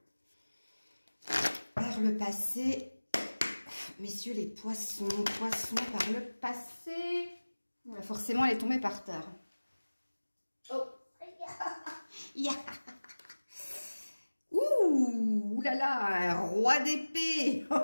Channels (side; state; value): both; inverted; correlation -1.00